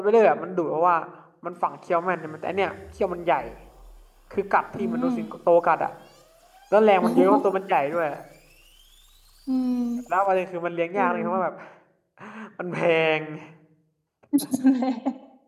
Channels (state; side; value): identical; both; correlation 1.00